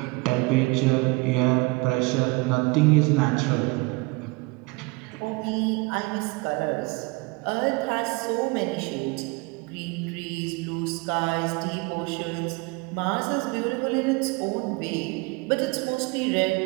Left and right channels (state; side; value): quieter; left; 26.3 dB